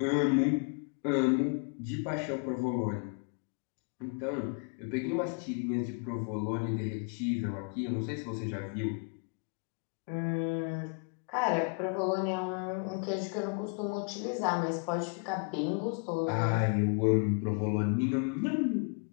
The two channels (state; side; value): quieter; right; 37.4 dB